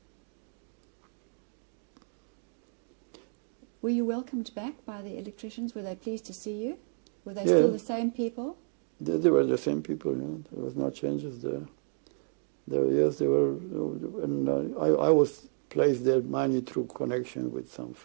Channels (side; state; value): left; silent; digital silence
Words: Were you welcomed back by the electricians? Were they pleased to see you? Were they still the same people? They were the same people, There was no changes there. Yes, they were, and I was placed there mainly through connection with some